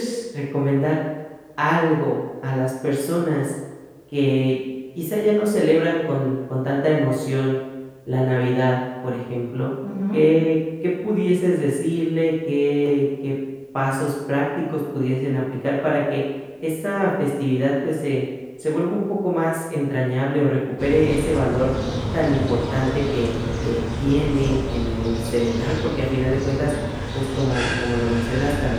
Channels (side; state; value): both; identical; correlation 1.00